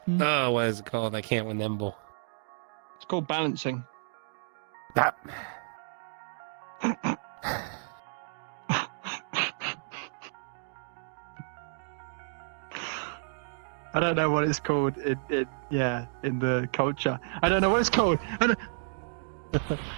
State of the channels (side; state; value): left; silent; digital silence